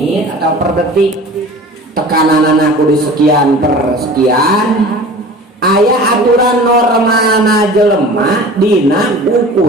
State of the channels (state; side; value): normal; both; correlation 0.40